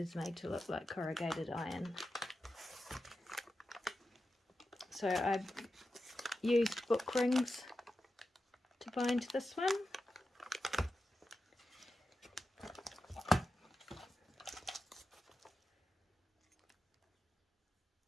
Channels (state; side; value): normal; both; correlation 0.91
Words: made to look like corrugated iron. So I used book rings to bind this one.